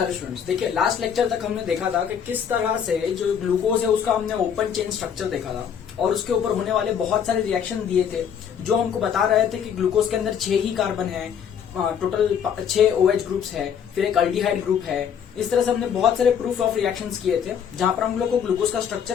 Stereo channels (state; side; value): quieter; right; 8.0 dB